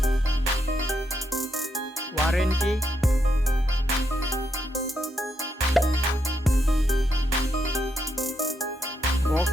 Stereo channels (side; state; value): both; normal; correlation 0.80